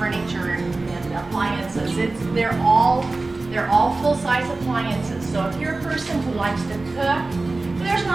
and appliances. They're all full-size appliances. So if you're a person who likes to cook, there's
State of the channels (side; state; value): left; quieter; 3.3 dB